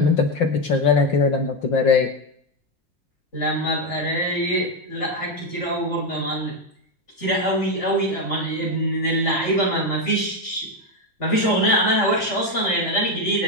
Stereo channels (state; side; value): late; right; 3.5 ms